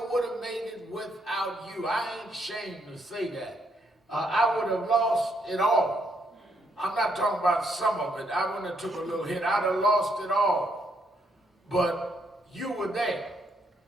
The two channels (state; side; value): normal; both; correlation 0.74